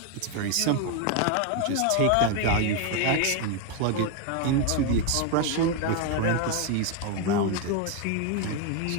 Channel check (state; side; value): different; both; correlation 0.01